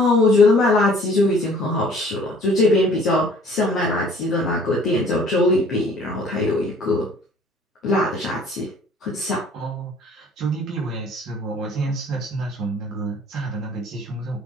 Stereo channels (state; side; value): normal; both; correlation 0.54